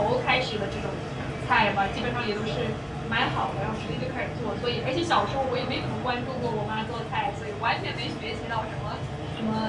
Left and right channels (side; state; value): both; identical; correlation 1.00